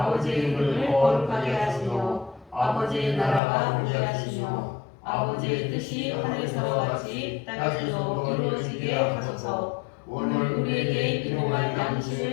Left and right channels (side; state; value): right; drops out; at 3.4 s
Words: 이름을 거룩하게 하시며 아버지의 나라가 오게 하시며 아버지의 뜻이 하늘에서와 같이 땅에서도 이루어지게 하소서. 오늘 우리에게 일용할